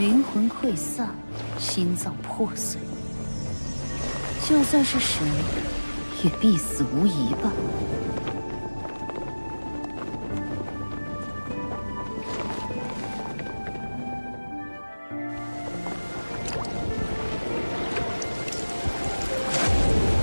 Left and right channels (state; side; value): inverted; both; correlation -1.00